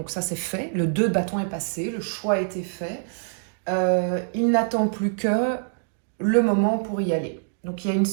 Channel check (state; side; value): silent; left; digital silence